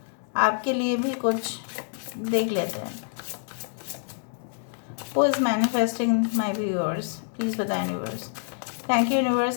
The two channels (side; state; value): right; silent; digital silence